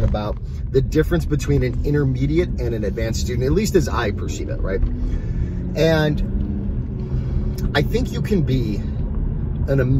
about the difference between an intermediate and an advanced student, at least as I perceive it, right? And I think you can be an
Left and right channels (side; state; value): both; identical; correlation 1.00